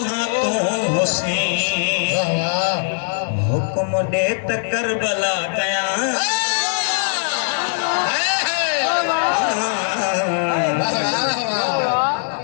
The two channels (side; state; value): right; silent; digital silence